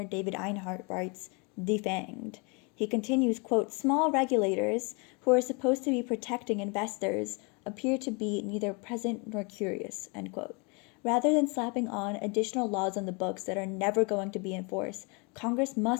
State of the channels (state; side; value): quieter; right; 31.9 dB